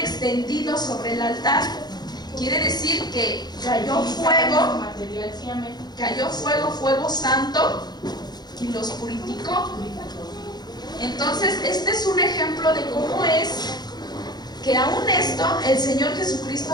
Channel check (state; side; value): late; right; 0.20 ms